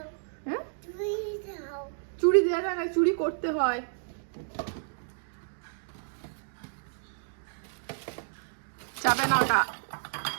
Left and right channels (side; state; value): left; silent; digital silence